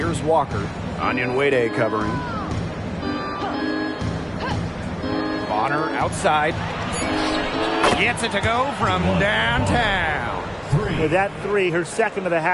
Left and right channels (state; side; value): identical; both; correlation 1.00